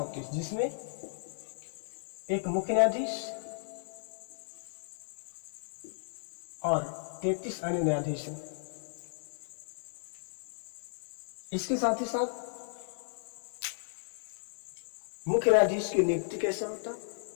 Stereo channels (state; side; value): silent; right; digital silence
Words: जिसमें एक मुख्य न्यायाधीश और 33 अन्य न्यायाधीश हैं। इसके साथ ही साथ मुख्य न्यायाधीश की नियुक्ति कैसे होता,